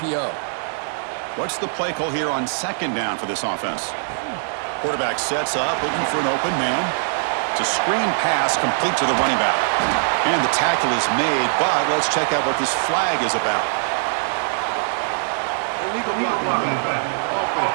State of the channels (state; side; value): silent; left; digital silence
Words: What's the play call here on second down for this offense? Quarterback sets up, looking for an open man. It's a screen pass complete to the running back. And the tackle is made, but let's check out what this flag is about. Illegal blocking.